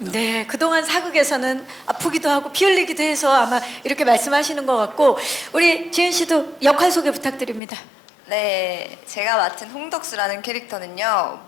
네, 그동안 사극에서는 아프기도 하고 피 흘리기도 해서 아마 이렇게 말씀하시는 것 같고 우리 지은 씨도 역할 소개 부탁드립니다. 네, 제가 맡은 홍덕수라는 캐릭터는요,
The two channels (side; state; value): right; drops out; at 7.6 s